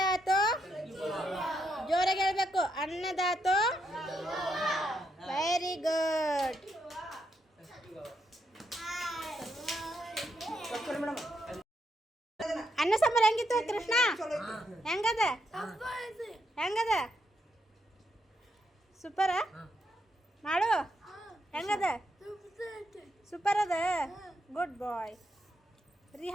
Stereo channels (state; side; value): normal; both; correlation 0.80